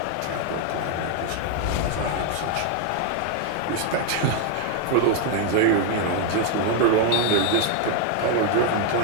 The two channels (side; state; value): both; different; correlation 0.01